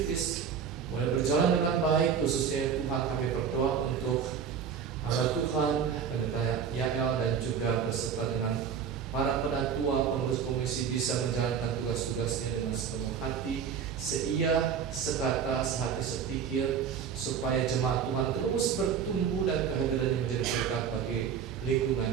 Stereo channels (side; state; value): left; quieter; 7.2 dB